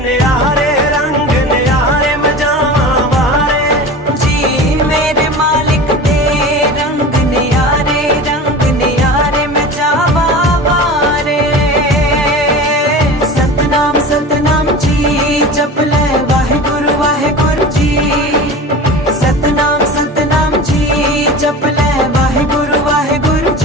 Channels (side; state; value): both; normal; correlation 0.34